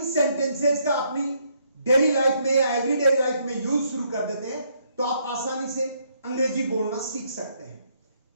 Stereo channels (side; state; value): both; inverted; correlation -0.72